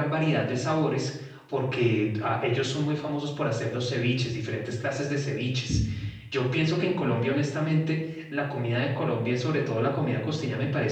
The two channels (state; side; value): identical; both; correlation 1.00